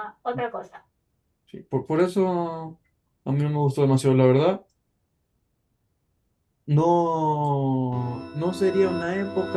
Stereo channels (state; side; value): identical; both; correlation 1.00